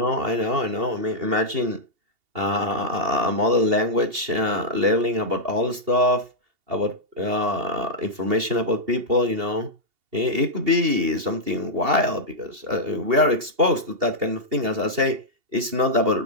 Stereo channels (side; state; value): left; late; 2.7 ms